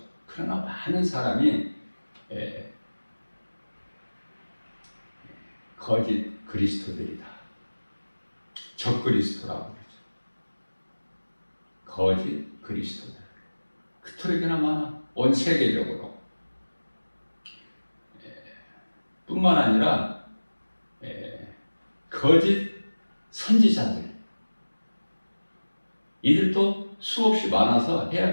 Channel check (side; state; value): both; inverted; correlation -1.00